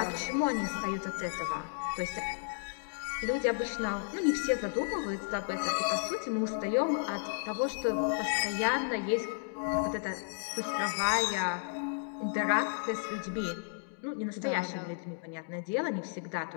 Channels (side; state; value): right; silent; digital silence